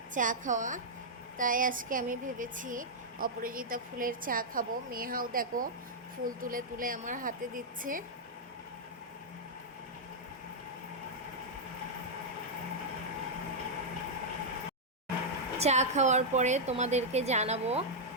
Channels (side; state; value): both; normal; correlation -0.07